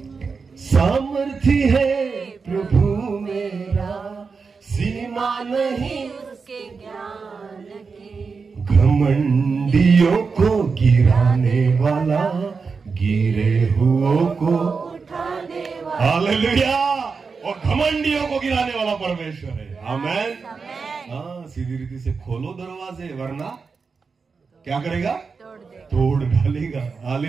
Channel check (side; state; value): left; quieter; 5.0 dB